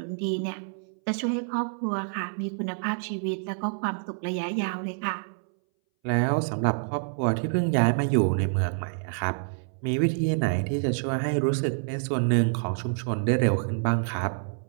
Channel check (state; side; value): silent; left; 60 dB below the other